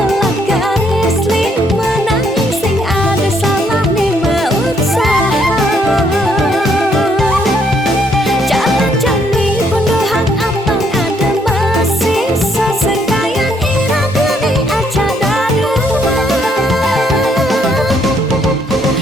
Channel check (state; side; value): normal; both; correlation 0.70